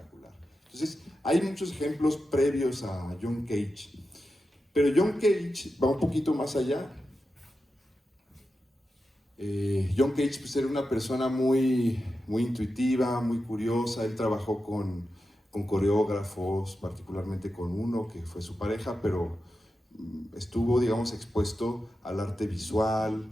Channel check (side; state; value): both; normal; correlation 0.90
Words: Entonces, hay muchos ejemplos previos a John Cage, pero John Cage va un poquito más allá. John Cage pues, era una persona muy intuitiva, muy curiosa. Él trabajó con coreógrafos, particularmente con uno que fue su pareja, pero estuvo, digamos, expuesto al arte visual,